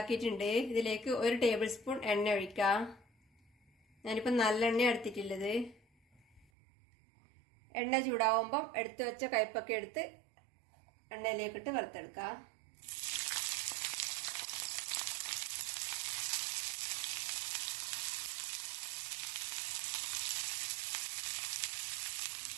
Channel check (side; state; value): left; drops out; at 6.5 s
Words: ഇതിലേക്ക് 1 ടേബിൾ സ്പൂൺ എണ്ണ ഒഴിക്കാം. ഞാനിപ്പോൾ നല്ലെണ്ണ എടുത്തിട്ടുള്ളത്. എണ്ണ ചൂടാവുമ്പം എടുത്തു വെച്ച കൈപ്പക്ക എടുത്ത് എണ്ണയിലേക്കിട്ട് വറുത്തെടുക്കാം.